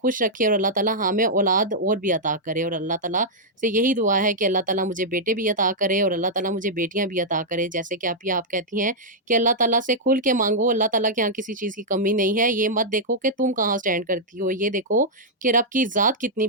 रखे और अल्लाह ताला हमें औलाद और भी अता करे। और अल्लाह ताला से यही दुआ है कि अल्लाह ताला मुझे बेटे भी अता करे और अल्लाह ताला मुझे बेटियाँ भी अता करे। जैसे कि आप कहती हैं कि अल्लाह ताला से खुल के माँगो, अल्लाह ताला के यहाँ किसी चीज़ की कमी नहीं है। ये मत देखो कि तुम कहाँ स्टैंड करती हो, ये देखो कि रब की ज़ात कितनी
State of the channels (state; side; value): normal; both; correlation -0.07